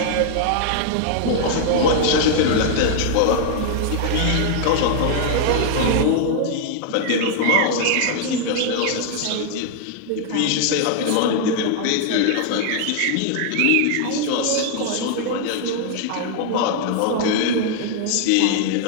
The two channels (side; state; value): both; different; correlation 0.00